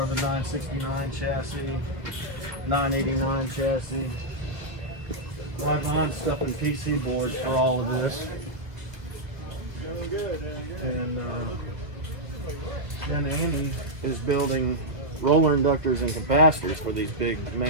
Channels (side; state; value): left; late; 2.2 ms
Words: of the 969 chassis, 989 chassis. Live behind stuff in PC boards for all of this. And then Andy is building roller inductors and capacitors for these big